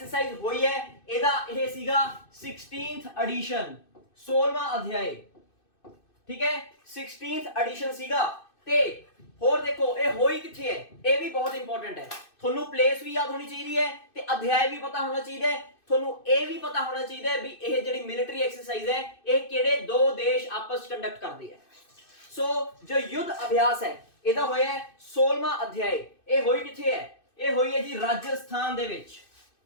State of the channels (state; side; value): late; right; 2.6 ms